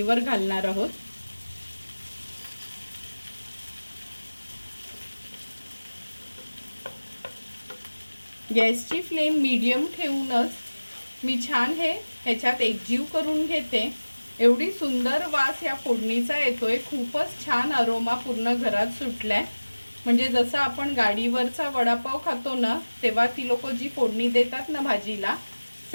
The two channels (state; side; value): inverted; both; correlation -1.00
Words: घालणार आहोत। गॅसची फ्लेम मीडियम ठेवूनच मी छान हे ह्याच्यात एकजीव करून घेते। एवढी सुंदर वास या फोडणीचा येतोय, खूपच छान अरोमा पूर्ण घरात सुटलाय। म्हणजे जसं आपण गाडीवरचा वडापाव खातो ना तेव्हा ती लोक जी फोडणी देतात ना भाजीला,